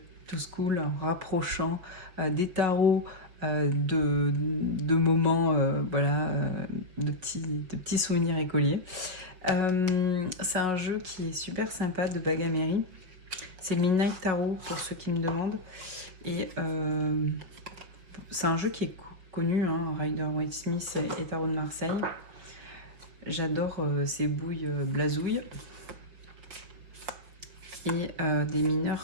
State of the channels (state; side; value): late; left; 5.8 ms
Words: to school, en rapprochant des tarots de moments, de petits souvenirs écoliers. C'est un jeu qui est super sympa de Bagamery. C'est le Midnight Tarot pour ceux qui me demandent. Et c'est un jeu qui est connu, hein, Rider-Waite-Smith et Tarot de Marseille. J'adore ces bouilles blasouilles. Et des